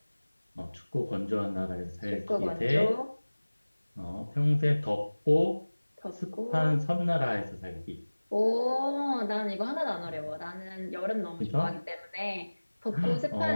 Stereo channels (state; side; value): inverted; both; correlation -1.00